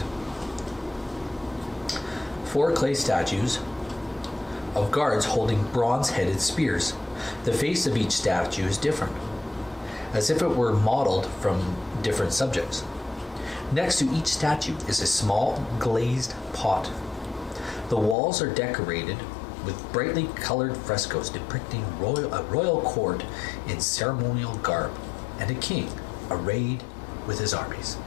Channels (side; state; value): right; drops out; at 18.2 s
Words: 4 clay statues of guards holding bronze-headed spears. The face of each statue is different, as if it were modeled from different subjects. Next to each statue is a small glazed pot. The walls are decorated with brightly colored frescoes depicting a royal court in ceremonial garb and a king arrayed with his armies.